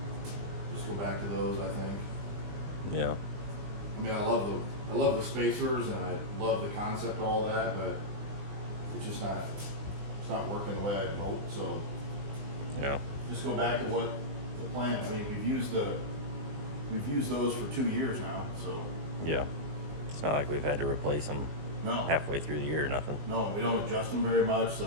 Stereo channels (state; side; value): late; left; 20 ms